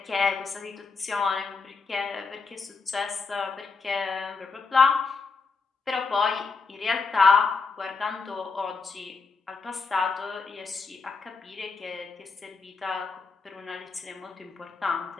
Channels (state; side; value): quieter; right; 4.5 dB